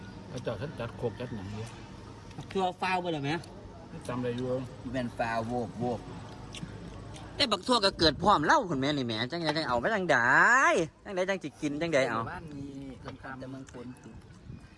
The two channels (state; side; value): identical; both; correlation 1.00